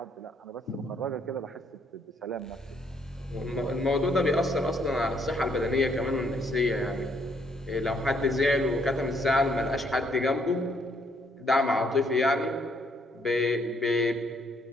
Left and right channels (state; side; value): normal; both; correlation 0.69